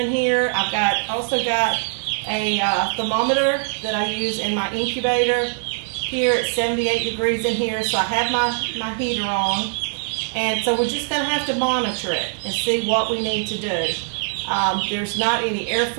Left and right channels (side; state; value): left; silent; digital silence